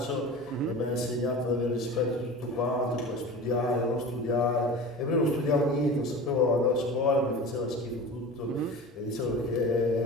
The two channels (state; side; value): normal; both; correlation 0.34